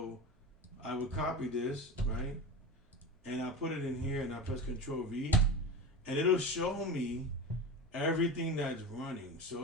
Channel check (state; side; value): normal; both; correlation 0.27